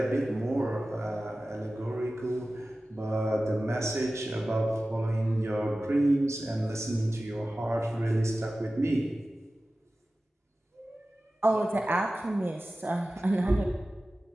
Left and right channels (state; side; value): normal; both; correlation 0.96